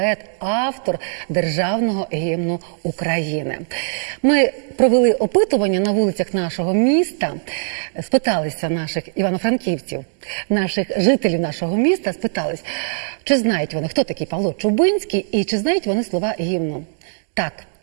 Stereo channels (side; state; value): left; silent; 66 dB below the other